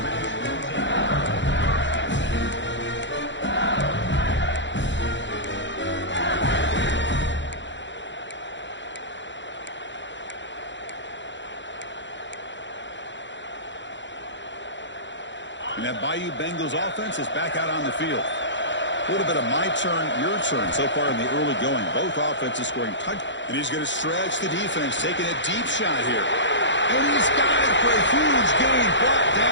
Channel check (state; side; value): late; right; 0.53 ms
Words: And that Bayou Bengals offense is back out on the field. A little bit of my turn, your turn so far in the early going. Both offenses scoring touch. And he's going to stretch the defense, taking a deep shot here. And he's got it for a huge gain, brought